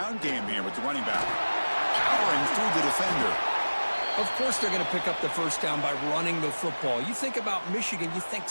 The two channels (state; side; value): inverted; both; correlation -1.00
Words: game here with the running back. Powering through the defender. Of course they're going to pick up the first down by running the football. You think about Michigan, you think